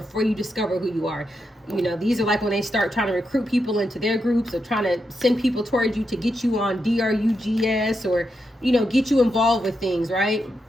you discover who you are. You know, these are like when they start trying to recruit people into their groups, or trying to send people towards you to get you on DRUGS, or, you know, get you involved with things, right?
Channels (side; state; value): both; normal; correlation 0.84